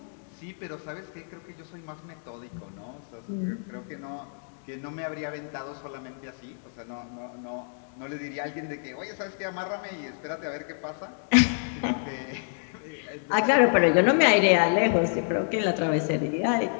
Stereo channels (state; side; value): silent; right; digital silence